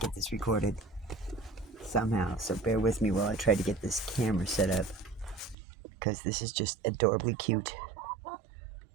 this recorded somehow, so bear with me while I try to get this camera set up, because this is just adorably cute.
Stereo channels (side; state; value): left; drops out; at 5.6 s